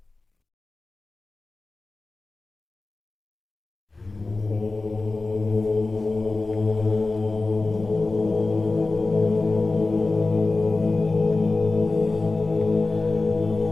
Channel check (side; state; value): right; quieter; 3.4 dB